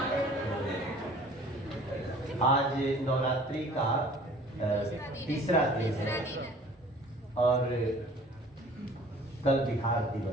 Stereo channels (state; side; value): normal; both; correlation 0.49